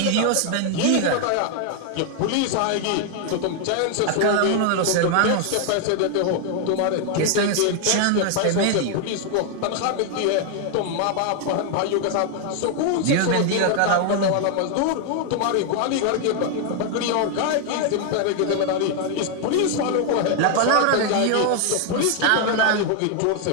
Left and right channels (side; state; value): both; different; correlation 0.00